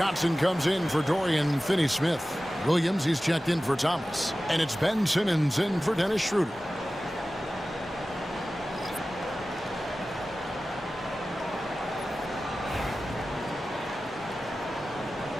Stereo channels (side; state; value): both; normal; correlation 0.95